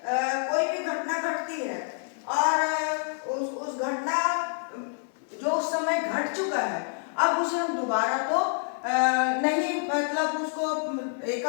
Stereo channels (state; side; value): silent; right; 59 dB below the other